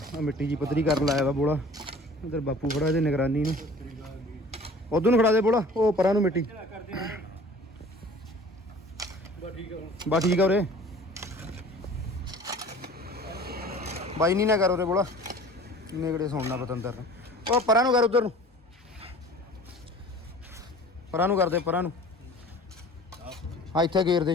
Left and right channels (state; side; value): normal; both; correlation 0.45